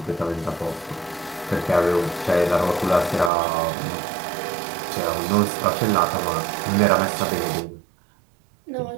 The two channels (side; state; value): left; drops out; at 3.3 s